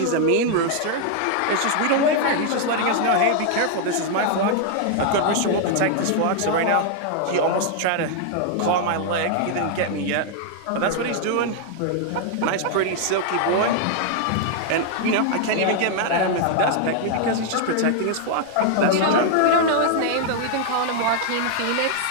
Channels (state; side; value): different; both; correlation 0.00